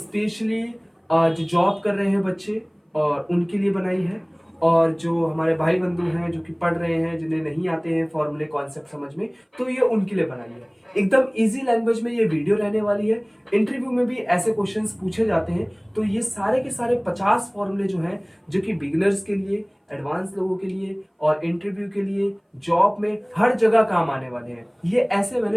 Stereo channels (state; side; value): identical; both; correlation 1.00